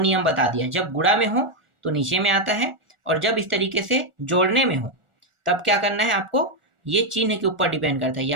बता दिया, जब गुणा में हो तो नीचे में आता है, और जब इस तरीके से जोड़ने में हो तब क्या करना है आपको, ये चिन्ह के ऊपर डिपेंड करता है।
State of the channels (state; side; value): late; left; 1.4 ms